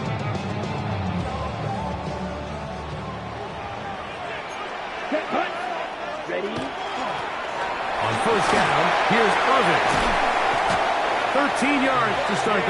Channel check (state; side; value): identical; both; correlation 1.00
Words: Ready? On first down, here's Irvin. 13 yards to start